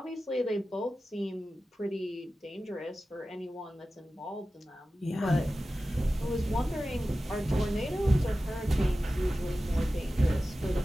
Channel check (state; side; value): normal; both; correlation 0.95